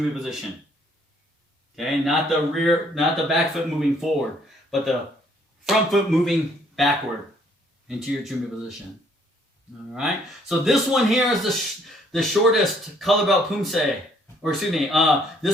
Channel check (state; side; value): normal; both; correlation 0.64